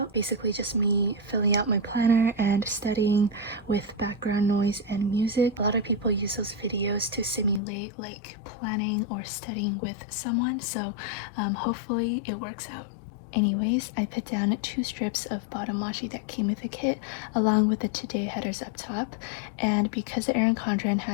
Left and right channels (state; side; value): drops out; right; at 7.6 s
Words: Basically just me filling out my planner and studying with background noise and music. A lot of people use those videos to simulate like planning or studying with someone, so hopefully it works out. Anyways, I put down 2 strips of bottom washi that came with the kit along with the today headers up top, and because the Erin Condren